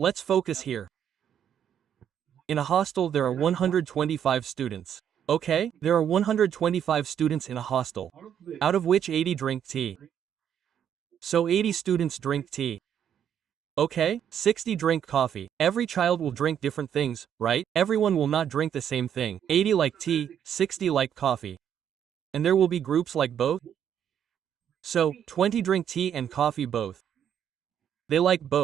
focus here. In a hostel there are 125 students. Okay, there are 125 students in a hostel, out of which 80 drink tea. So 80 students drink tea. Okay, 60 drink coffee. Every child will drink different things, right? Everyone will not drink the same thing. 80 like tea, 60 like coffee. And there will be groups like both. So, 20 drink tea and coffee both. They like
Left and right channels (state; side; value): quieter; left; 9.1 dB